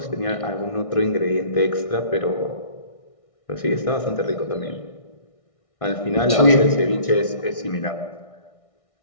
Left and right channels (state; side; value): late; right; 1.6 ms